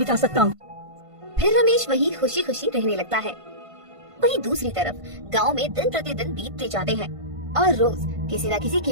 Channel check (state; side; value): late; left; 1.5 ms